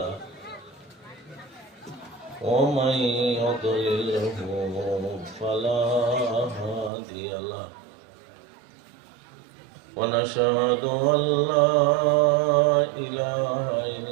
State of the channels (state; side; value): drops out; left; at 6.9 s